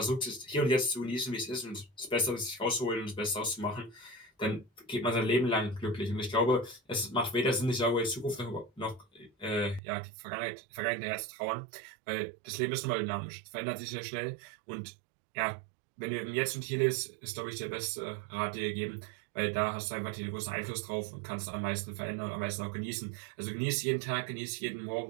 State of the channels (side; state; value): left; drops out; at 9.8 s